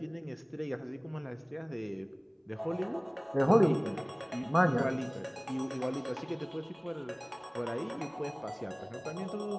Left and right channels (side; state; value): both; identical; correlation 1.00